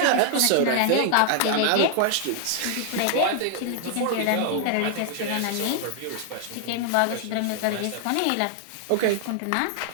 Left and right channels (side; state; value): both; different; correlation 0.00